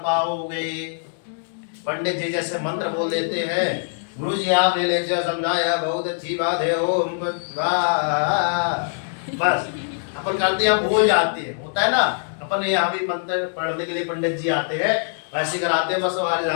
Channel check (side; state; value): right; silent; digital silence